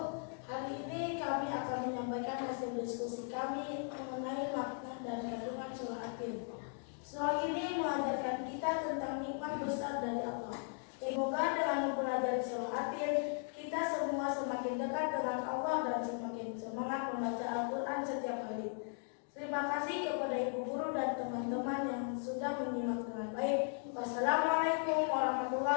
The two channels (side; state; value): right; silent; 53 dB below the other